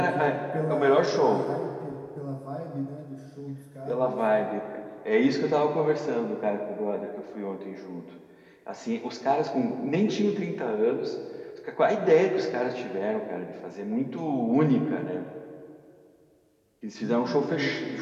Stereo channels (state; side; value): identical; both; correlation 1.00